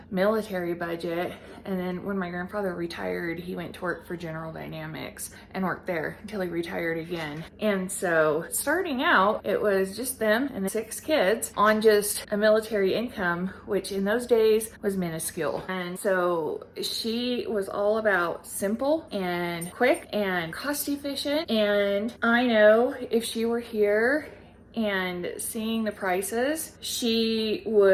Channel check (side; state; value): both; identical; correlation 1.00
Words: military budget. And then when my grandfather retired, he went to work for General Dynamics and worked there until he retired again. And so starting out, it was just them and 6 kids on just a military income, which in those days was minuscule. And so she was all about simple and quick and cost efficient. And I know if she were here and seeing the prices, she